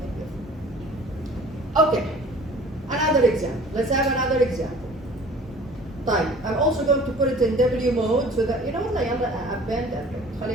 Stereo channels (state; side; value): normal; both; correlation 0.48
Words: with. Okay. Another example. Let's have another example. طيب. I'm also going to put it in W mode so that, you know what, append.